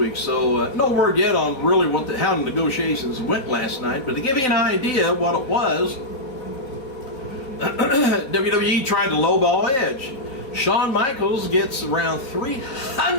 So no word yet on really how the negotiations went last night. But to give you an idea what it was, WWE tried to lowball Edge. Shawn Michaels gets around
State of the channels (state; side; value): late; right; 3.9 ms